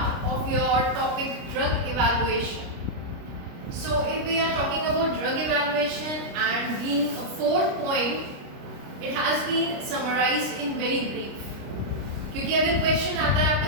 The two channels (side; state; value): left; late; 29 ms